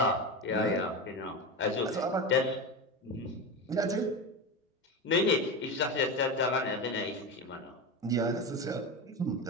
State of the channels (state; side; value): normal; both; correlation 0.20